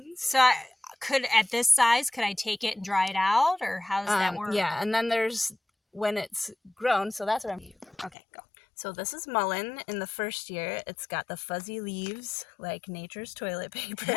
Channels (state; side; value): drops out; right; at 8.2 s